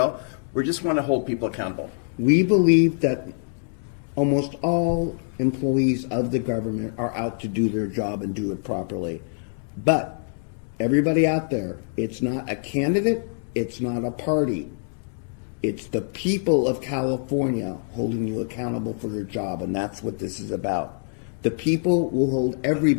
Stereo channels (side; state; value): right; silent; digital silence